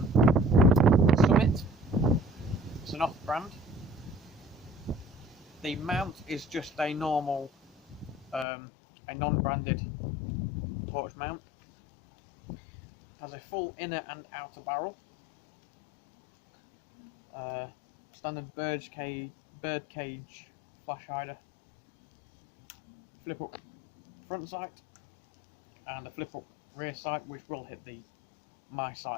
Summit. It's an off-brand. The mount is just a normal, a non-branded torch mount. Has a full inner and outer barrel. Standard bird cage flash hider. Flip up front sight and a flip up rear sight, which will hit my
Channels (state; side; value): drops out; right; at 8.5 s